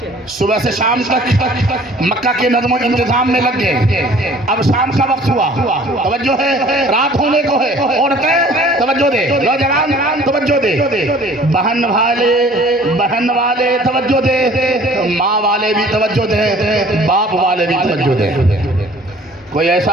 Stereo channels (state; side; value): normal; both; correlation 0.51